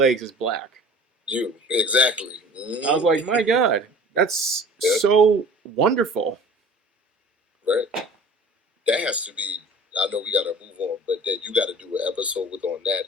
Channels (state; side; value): normal; both; correlation 0.43